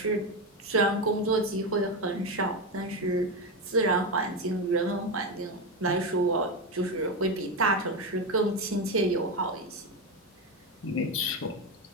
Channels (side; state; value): both; normal; correlation 0.13